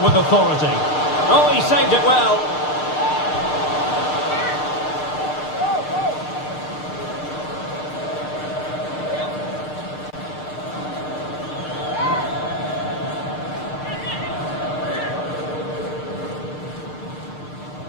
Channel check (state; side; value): late; right; 6.6 ms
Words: authority. Oh, he saved it well.